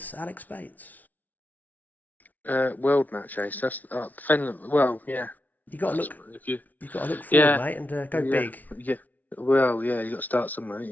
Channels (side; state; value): right; late; 0.079 ms